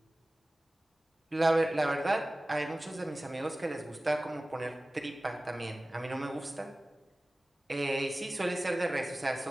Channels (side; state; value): both; normal; correlation 0.97